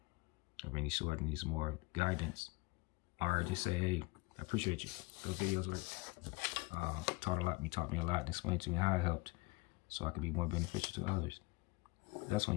of any sort and needs more guidance, or just say, hey, I appreciate you. Those videos worked. Taught a lot. You taught me a lot and explained to me how it helped so I could be more beneficial to others. That's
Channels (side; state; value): right; quieter; 22.9 dB